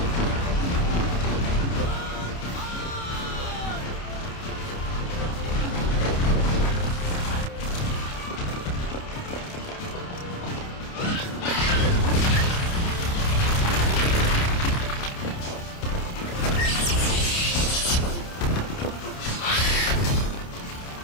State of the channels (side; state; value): right; late; 29 ms